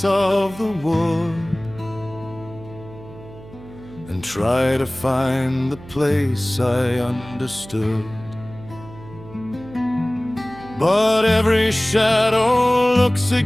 of the wood and try to find the place I understood. But every shadow looks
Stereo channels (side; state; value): right; noise; hum, 18 dB below the sound